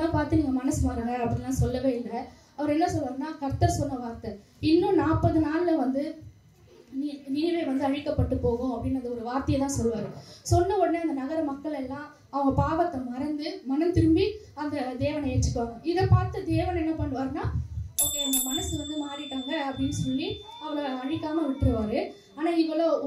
பார்த்து நீங்க மனசு மாறுங்க அப்படின்லாம் சொல்லவே இல்லை. அவர் என்ன சொல்றாருன்னா, கர்த்தர் சொன்ன வார்த்தை இன்னும் 40 நாள்ல வந்து நினிவே வந்து அழிக்கப்பட்டு போகும் அப்படின்னு ஒரு வார்த்தையை தான் சொல்லுவாரு. சொன்ன உடனே அந்த நகர மக்கள் எல்லாம் அவங்க பாவத்தை மறந்து மனம் திரும்பி அந்த தேவனை ஏற்றுக்குவாங்க. இதை பார்த்து தேவன் என்ன பண்ணுவாருன்னா, ஓகே அவங்க மனசு வந்து மாறிட்டாங்க அப்படின்னு சொல்லி அவளை அழிக்காம விட்டுருவாரு. ஆனா இவ்வளோ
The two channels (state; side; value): identical; both; correlation 1.00